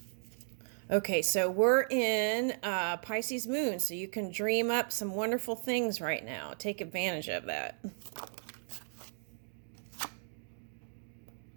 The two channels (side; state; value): left; silent; digital silence